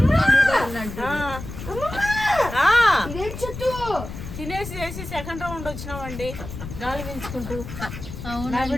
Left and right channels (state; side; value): noise; left; rumble, 10 dB below the sound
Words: అన్నట్టు ఇదేం చెట్టు తినేసి చేసి సెకండ్ రౌండ్ వచ్చినామండి గాలి పెంచుకుంటూ. నా